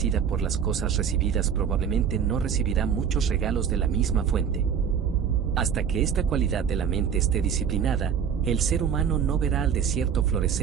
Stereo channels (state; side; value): quieter; left; 7.6 dB